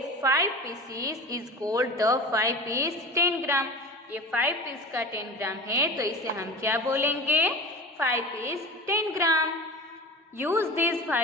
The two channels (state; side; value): normal; both; correlation 0.34